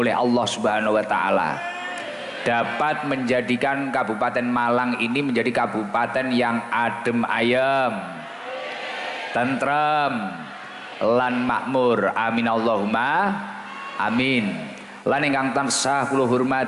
Allah Subhanahu wa taala, dapat menjadikan Kabupaten Malang ini menjadi kabupaten yang adem ayem, tentrem, lan makmur. Amin Allahumma amin. Lan ingkang tansah kula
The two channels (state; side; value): identical; both; correlation 1.00